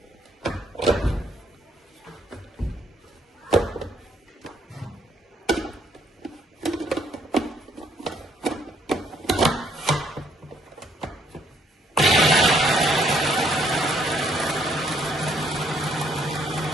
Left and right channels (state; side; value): normal; both; correlation 0.69